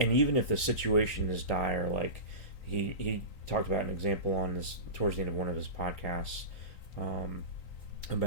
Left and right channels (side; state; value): right; late; 3.9 ms